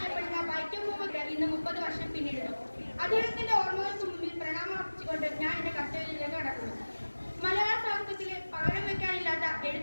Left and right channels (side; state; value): both; inverted; correlation -1.00